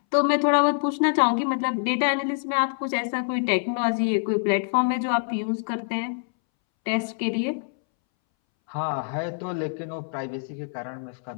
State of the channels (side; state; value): right; silent; 62 dB below the other